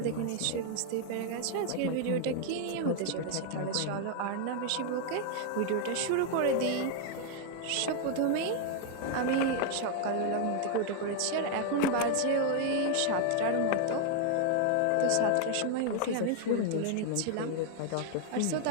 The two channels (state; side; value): different; both; correlation 0.00